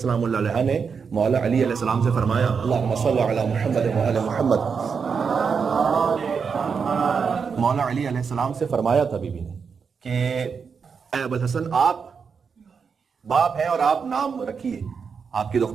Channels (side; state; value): left; quieter; 5.9 dB